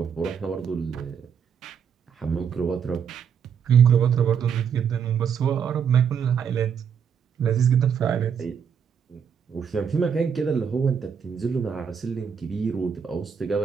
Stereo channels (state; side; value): quieter; left; 7.3 dB